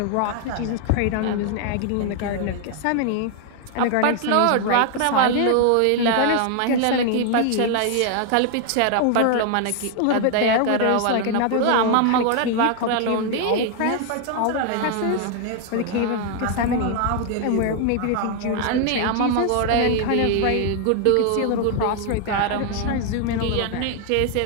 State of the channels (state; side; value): different; both; correlation 0.00